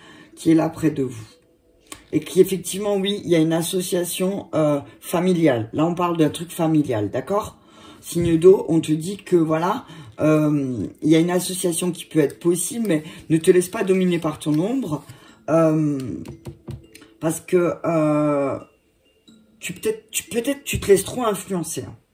qui est là près de vous. Et qu'effectivement, oui, il y a une association familiale. Là, on parle d'un truc familial, d'accord? Signe d'eau, on te dit que, voilà... il y a une association qui peut être possible, mais ne te laisse pas dominer par ton ombre, parce que peut-être tu te laisses trop influencer. Hein.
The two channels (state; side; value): identical; both; correlation 1.00